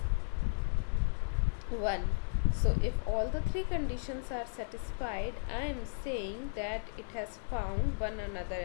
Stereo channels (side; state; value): right; silent; digital silence